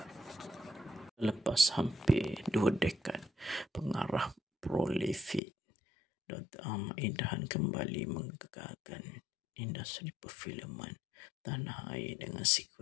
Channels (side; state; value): right; drops out; at 5.4 s